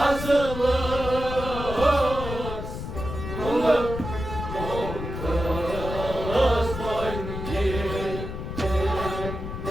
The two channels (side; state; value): left; noise; rumble, 6 dB below the sound